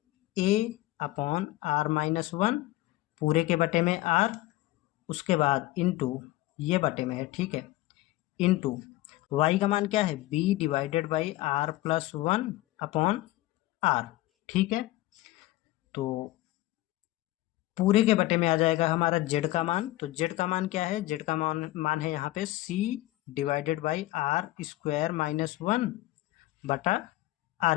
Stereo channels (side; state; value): right; quieter; 17.4 dB